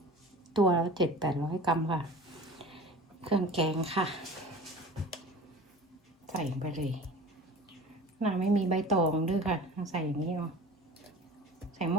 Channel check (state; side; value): normal; both; correlation 0.40